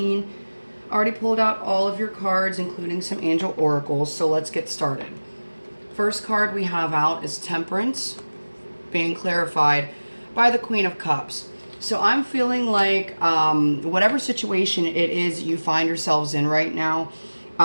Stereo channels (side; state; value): both; inverted; correlation -1.00